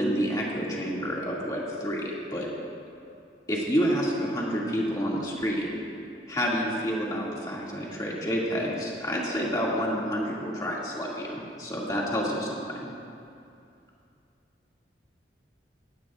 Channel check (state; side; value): normal; both; correlation 0.59